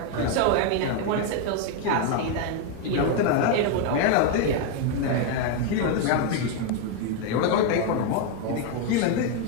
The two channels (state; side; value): different; both; correlation 0.01